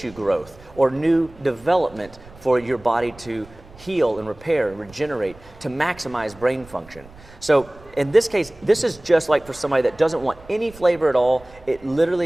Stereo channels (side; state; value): right; noise; rumble, 22 dB below the sound